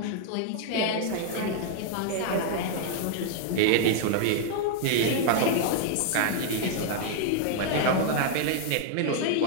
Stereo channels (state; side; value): different; both; correlation -0.01